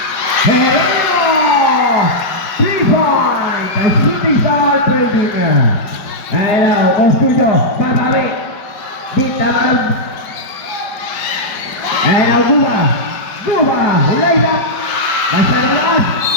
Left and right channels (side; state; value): right; late; 5.2 ms